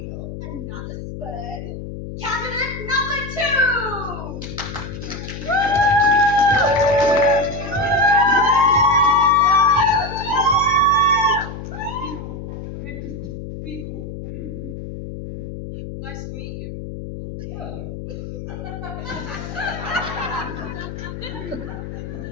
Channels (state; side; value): noise; left; hum, 9 dB below the sound